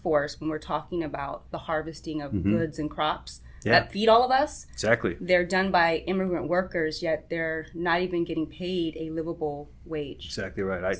when we're talking about the harvesting of goods and crops that feed all of us, exactly, they're done by immigrant workers, yet they're not even getting paid a livable wage. Exactly right.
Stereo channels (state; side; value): identical; both; correlation 1.00